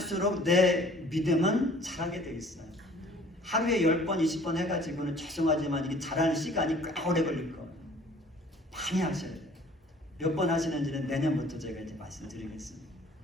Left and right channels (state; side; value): normal; both; correlation 0.52